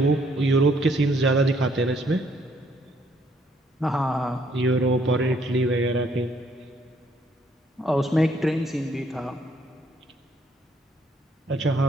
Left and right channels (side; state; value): both; normal; correlation 0.67